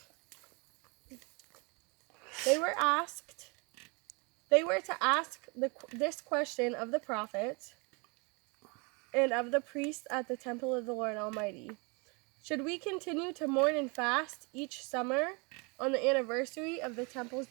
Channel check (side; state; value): left; quieter; 31.0 dB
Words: They were to ask this question of the prophets and of the priests at the temple of the Lord Almighty. Should we continue to mourn and fast each summer on the anniversary of the temple's